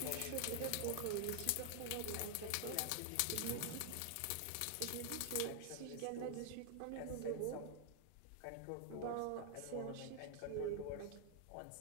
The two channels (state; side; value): different; both; correlation 0.00